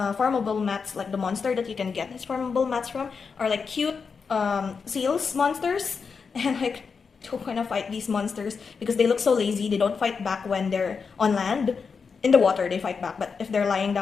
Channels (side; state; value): right; quieter; 5.5 dB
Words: mats, like the monster that you can get his farmable mats from, are like cute seals monsters, and like don't want to fight these monsters because they look so lazy. They don't fight back when they're on land. In the water they fight back, but if they're lying